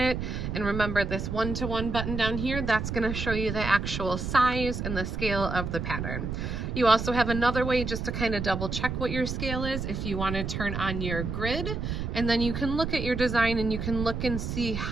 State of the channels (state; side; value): noise; right; rumble, 4 dB below the sound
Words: And remember, this 1-to-1 button down here, that's gonna show you the actual size and the scale of the pattern. You also have another way just to kind of double check what your scale is if you want to turn on your grid, and then you can look at your design and you can look and see